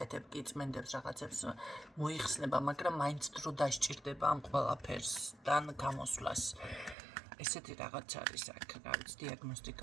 კი წმენდებს რაღაცებს მოიხსნება, მაგრამ მაინც დრო დასჭირდება ამ ყველაფერსთან გამოსვლას. ესეთი რაღაც არის აქ, რა ვიცი,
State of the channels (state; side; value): drops out; left; at 7.0 s